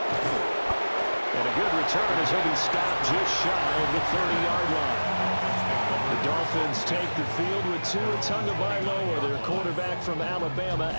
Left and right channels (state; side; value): inverted; both; correlation -1.00